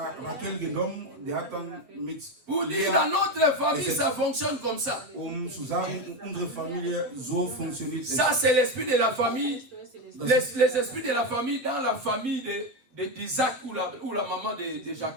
Rachel genommen, der hat dann mit Pour dire, dans notre famille, ça fonctionne comme ça. Zu sagen, unsere Familie so funktioniert. Ça, c'est l'esprit de la famille. Les esprits de la famille dans la famille d'Isaac ou la maman de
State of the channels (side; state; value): left; late; 8.0 ms